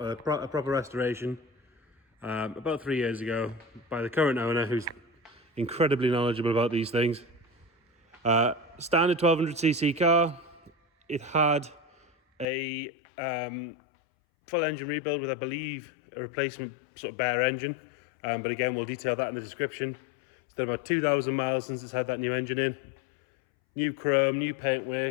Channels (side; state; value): right; drops out; at 12.5 s